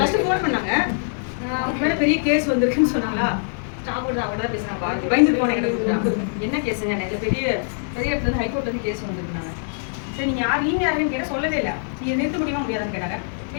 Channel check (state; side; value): silent; right; digital silence